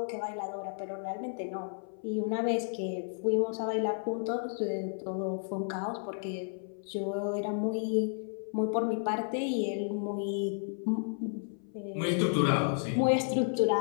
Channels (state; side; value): silent; right; 56 dB below the other